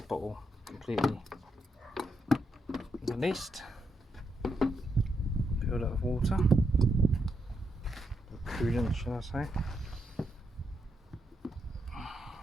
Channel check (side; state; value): both; normal; correlation 0.81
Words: bottle completely released. Filled up with water, or coolant should I say.